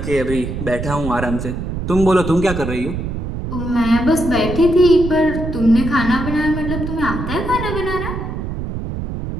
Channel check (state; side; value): noise; right; rumble, 5 dB below the sound